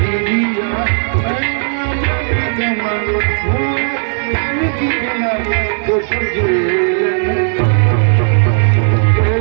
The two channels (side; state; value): left; silent; digital silence